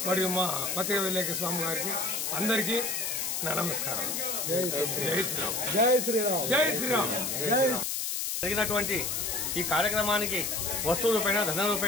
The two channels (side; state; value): left; noise; hiss, 1 dB below the sound